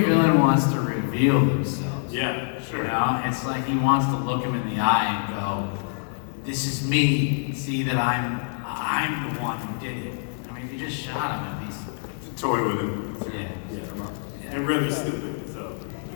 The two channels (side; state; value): right; silent; digital silence